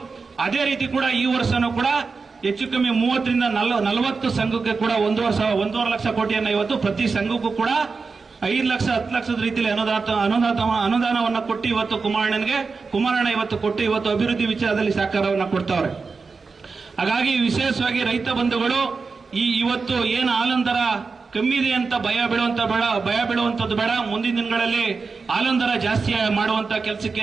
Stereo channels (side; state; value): left; quieter; 4.6 dB